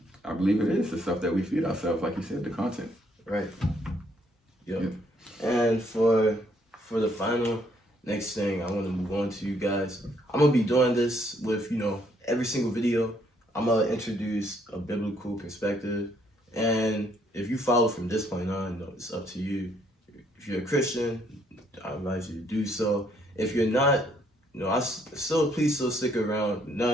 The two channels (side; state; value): both; normal; correlation 0.69